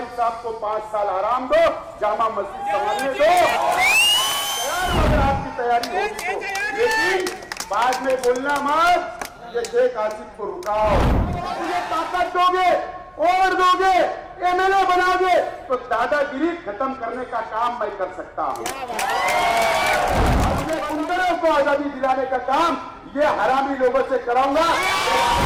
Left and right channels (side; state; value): both; identical; correlation 1.00